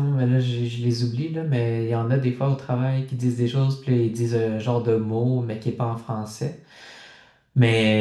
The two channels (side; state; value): both; identical; correlation 1.00